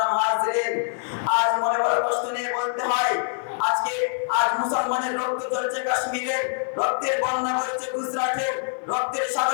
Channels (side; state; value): right; silent; 59 dB below the other